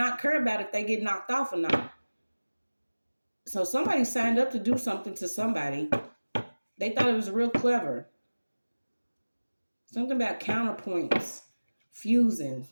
care about if they get knocked off or not. So somebody signed up to do something to somebody. They thought it was real clever. Something about counterpoints, fusing.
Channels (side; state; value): both; inverted; correlation -1.00